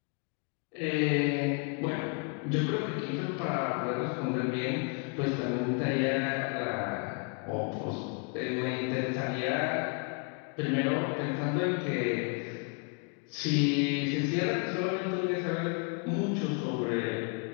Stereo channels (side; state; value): right; quieter; 37.3 dB